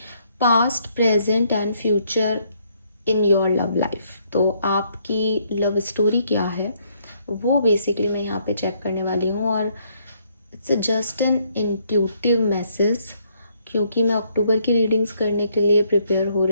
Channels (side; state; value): both; inverted; correlation -0.70